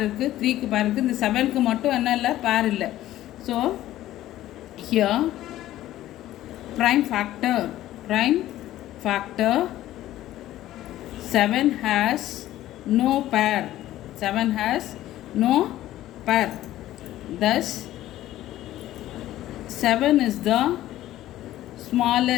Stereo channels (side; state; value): right; quieter; 14.2 dB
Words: இருக்குது, 3க்கு பேர் இருக்குது, இந்த 7க்கு மட்டும் என்ன இல்லை? பேர் இல்லை. So here prime factor 7 has no pair. Thus 7 is the